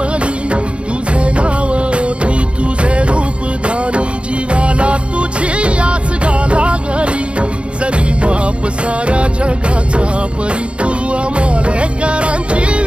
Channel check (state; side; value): late; left; 0.058 ms